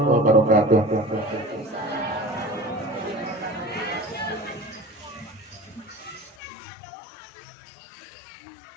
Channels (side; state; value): right; drops out; at 6.4 s